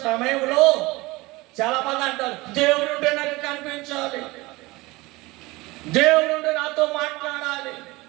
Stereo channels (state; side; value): quieter; left; 21.8 dB